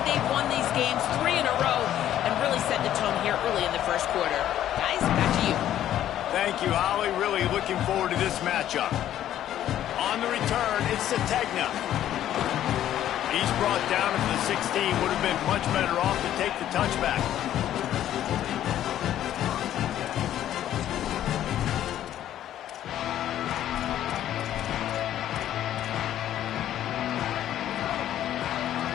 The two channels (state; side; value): quieter; right; 11.8 dB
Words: they've won these games 3 in a row, and really set the tone here early in the first quarter. Guys, back to you. Thank you, Holly. Really looking forward to this matchup. On the return, it's Sategna. He's brought down at the 16. Would have been much better off to take the touchback.